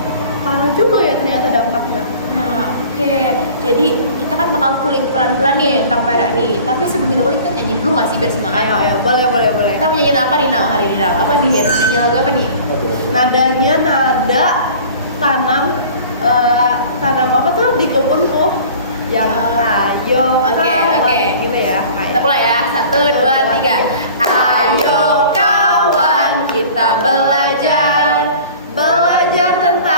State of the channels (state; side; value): inverted; both; correlation -0.45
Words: parah juga ya ternyata dampaknya. Nah, oke. Jadi kita kan bakal kulik pelan-pelan nih tentang PRRI. Tapi sebelum kita kulik kita nyanyi dulu nggak sih biar semangat? Ayo, boleh. Kita mau nyanyi apa nih Nau hari ini Nau? Apa nih? Nyanyi lagu apa nih? Nadanya nada tanam apa tuh di kebun tuh yang ayo Oke. kawan, gitu ya. Kita mulai ya. 1, 2, 3. Ayo kawan kita belajar